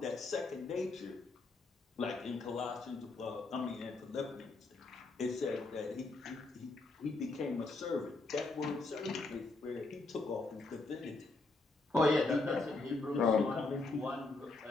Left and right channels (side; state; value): right; quieter; 3.4 dB